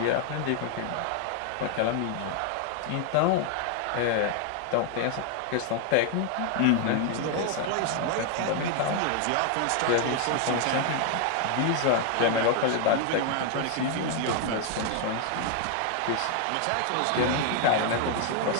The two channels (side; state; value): both; different; correlation 0.00